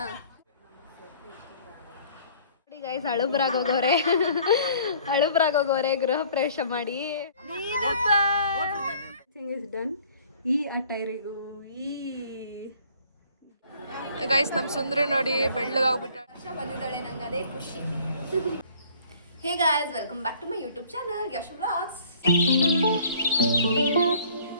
ನೋಡಿ ಗೈಸ್, ಹಳುಬ್ರಾಗೋಗೋರೆ ಗೃಹ ಪ್ರವೇಶ ಮಾಡಿ. ಡನ್. ಈ ಅಟೈರಿಗೂ ಗೈಸ್ ನಮ್ಮ ಸುಂದ್ರಿ ನೋಡಿ ಬೆಳ್ಳಗಾಗ್ಬಿಟ್ಟ. ವರ್ಷ ಬಂದಿದ್ದಾಳೆ, ನಂಗೆ ಅದೇ ಖುಷಿ. Hey guys, welcome back to my YouTube channel Yashu vlogs.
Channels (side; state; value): both; inverted; correlation -0.55